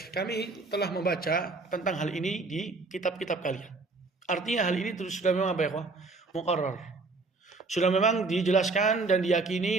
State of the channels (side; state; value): left; quieter; 3.7 dB